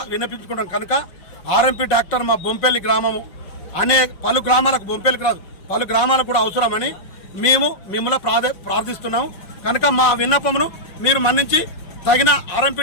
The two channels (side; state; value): right; late; 5.4 ms